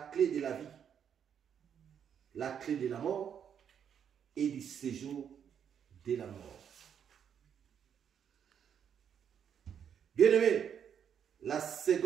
clé de la vie, la clé de la mort et du séjour de la mort. Bien-aimé, la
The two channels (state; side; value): quieter; left; 8.2 dB